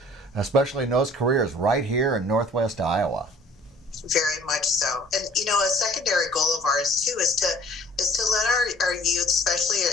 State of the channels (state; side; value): normal; both; correlation 0.52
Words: especially in those careers right here in Northwest Iowa. Very much so. And, a secondary goal of ours, too, is to let our youth, especially,